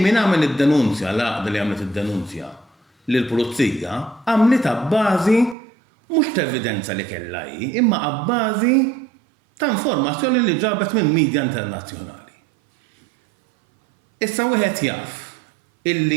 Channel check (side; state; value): left; drops out; at 5.6 s